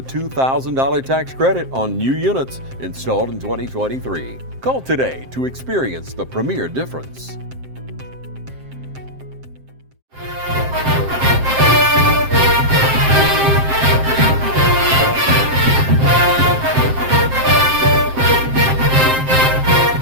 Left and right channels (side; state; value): left; late; 7.6 ms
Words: $2,000 tax credit on new units installed in 2023. Call today to experience the Premier difference.